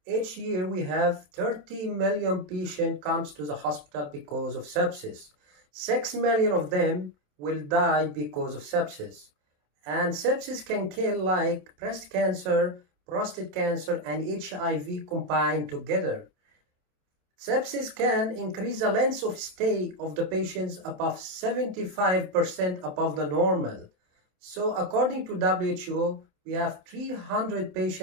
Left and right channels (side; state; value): left; late; 27 ms